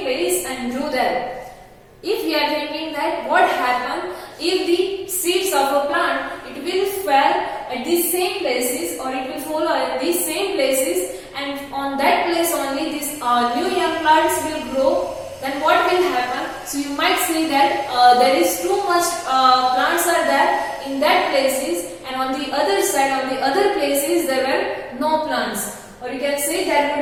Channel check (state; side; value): identical; both; correlation 1.00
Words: place and grew there? If we are thinking that what happened if the seeds of a plant, it will fall at the same places, or it will fall at the same places, and on that place only these new young plants will grow, then what will happen? So you might say that there is too much plants are there in that places, and on the other side, on the other places, there were no plants. Or you can say there